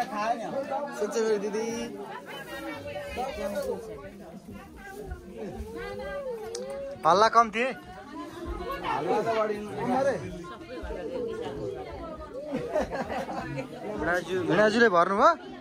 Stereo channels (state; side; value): identical; both; correlation 1.00